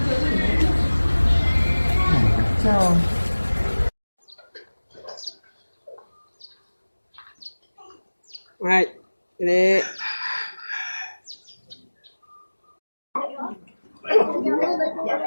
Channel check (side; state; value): both; inverted; correlation -1.00